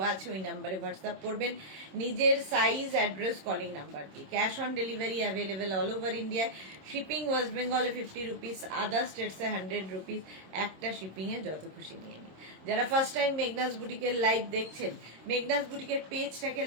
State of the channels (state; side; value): late; left; 26 ms